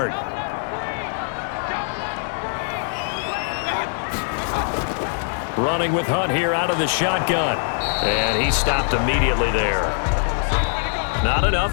Running with Hunt here out of the shotgun. And he stopped immediately there. Not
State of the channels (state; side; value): silent; right; digital silence